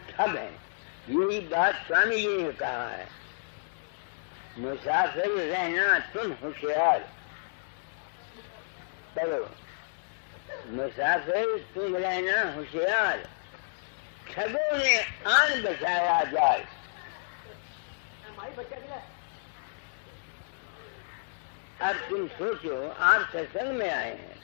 ठग है। यही बात स्वामी जी ने कहा है, मुसाफिर रहना तुम होशियार। चलो, मुसाफिर तुम रहना होशियार, ठगों ने आन बचाया जाए। अब तुम सोचो, आप सत्संग में आए हैं,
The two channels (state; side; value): silent; right; digital silence